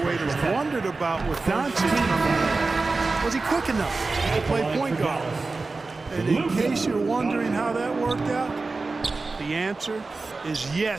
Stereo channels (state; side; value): quieter; left; 3.7 dB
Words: wondered about with Doncic, was he quick enough to play point guard? And in case you're wondering how that worked out, the answer is